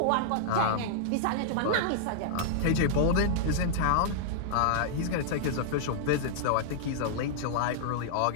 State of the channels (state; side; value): different; both; correlation -0.02